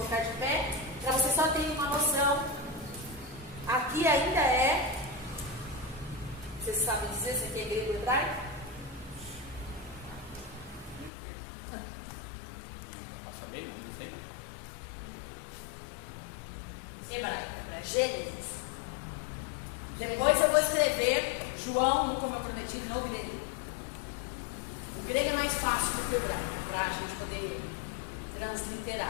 de pé, para vocês só terem uma noção. Aqui ainda é, vocês sabem dizer se aqui é grego ou hebraico? Hebraico, Gênesis. Depois eu vou escrever João, como eu prometi, no grego. O grego é mais fácil do que o hebraico, para a gente poder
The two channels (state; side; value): drops out; right; at 11.1 s